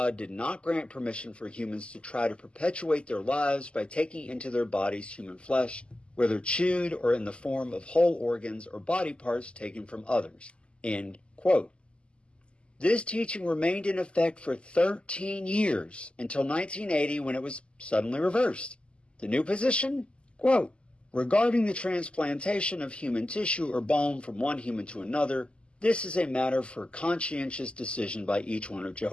did not grant permission for humans to try to perpetuate their lives by taking into their bodies human flesh, whether chewed or in the form of whole organs or body parts taken from others. End quote. This teaching remained in effect for 13 years until 1980 when it was suddenly reversed. The new position? Quote, regarding the transplantation of human tissue or bone from one human to another, this is a matter for conscientious decision by each one of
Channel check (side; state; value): right; late; 0.053 ms